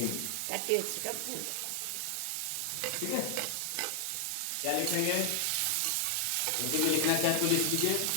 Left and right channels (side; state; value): both; different; correlation 0.00